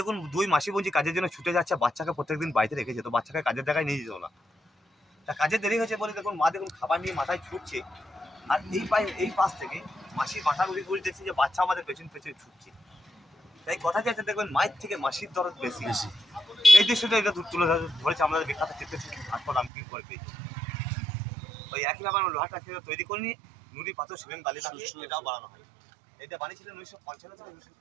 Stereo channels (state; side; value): drops out; left; at 19.7 s